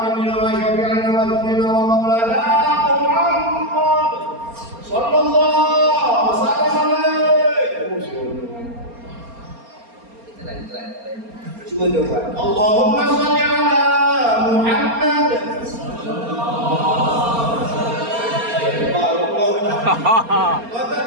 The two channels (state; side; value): late; left; 4.3 ms